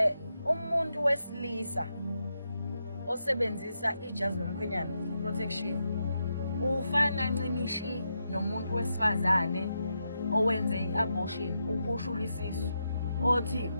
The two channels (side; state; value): both; inverted; correlation -0.84